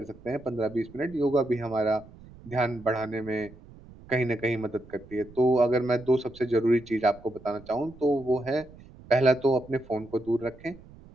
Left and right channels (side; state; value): right; noise; rumble, 21 dB below the sound